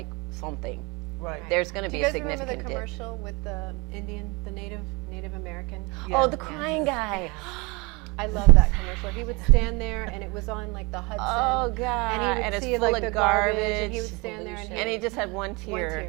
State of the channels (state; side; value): quieter; left; 27.0 dB